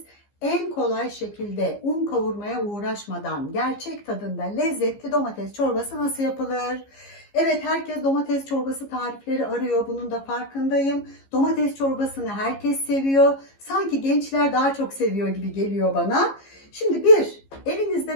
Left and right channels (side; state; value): right; late; 15 ms